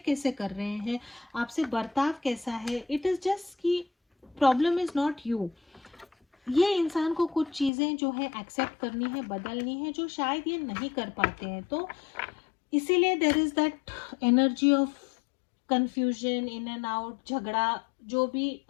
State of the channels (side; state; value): right; drops out; at 7.7 s